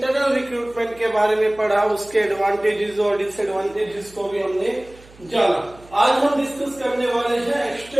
रिक्रूटमेंट के बारे में पढ़ा, उसके एडवांटेजेस और डिसएडवांटेजेस को भी हमने जाना। आज हम डिस्कस करने वाले हैं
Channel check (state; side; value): noise; right; hum, 24 dB below the sound